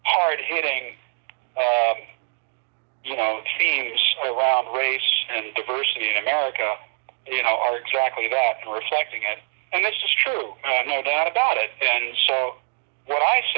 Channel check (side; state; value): left; silent; digital silence